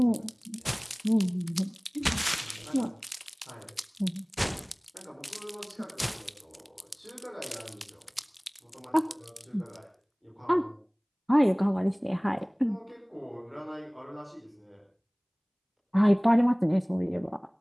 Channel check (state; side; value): identical; both; correlation 1.00